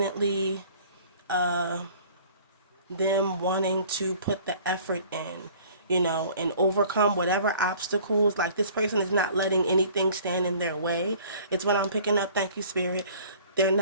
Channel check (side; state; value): both; inverted; correlation -0.50